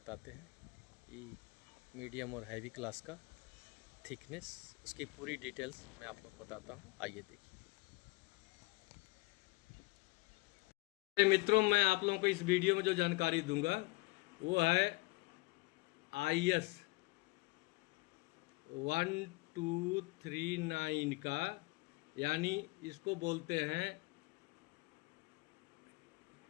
हैं कि मीडियम और हैवी क्लास का थिकनेस, उसकी पूरी डिटेल्स मैं आप लोग को बताता हूँ। आइए देखिए मित्रों, मैं आप लोगों को इस वीडियो में जो जानकारी दूंगा वो है IS 1239 का, यानी इसको बोलते हैं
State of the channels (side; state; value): right; quieter; 25.5 dB